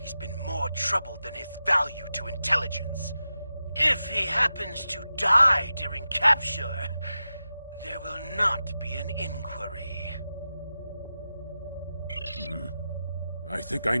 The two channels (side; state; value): both; inverted; correlation -0.92